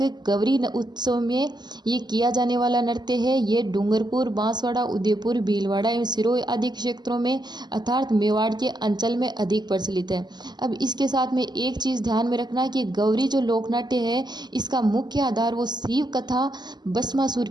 गौरी उत्सव में ये किया जाने वाला नृत्य है। ये डूंगरपुर, बांसवाड़ा, उदयपुर, भीलवाड़ा एवं सिरोही आदि क्षेत्रों में अर्थात मेवाड़ के अंचल में अधिक प्रचलित है। अब इसके साथ में एक चीज़ ध्यान में रखना कि गौरी जो लोकनाट्य है इसका मुख्य आधार वो शिव कथा, भस्मासुर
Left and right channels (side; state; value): left; late; 0.21 ms